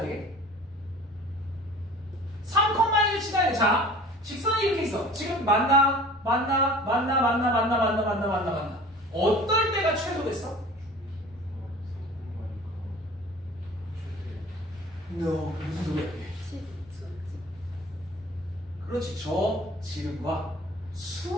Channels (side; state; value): left; noise; rumble, 29 dB below the sound